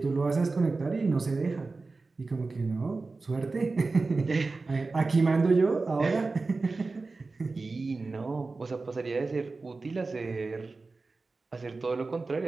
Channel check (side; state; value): left; quieter; 3.8 dB